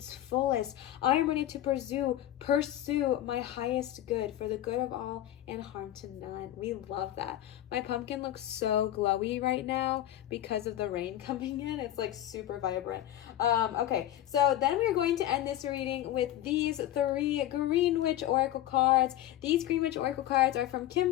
fullest. I am ready to pursue my highest good for the good of all and harm to none. We love that. My pumpkin looks so glowy right now because of the rain coming in. It's like super vibrant. Okay, so then we're going to end this reading with these 3 Green Witch Oracle cards. These Green Witch Oracle cards are from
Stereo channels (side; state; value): right; quieter; 13.0 dB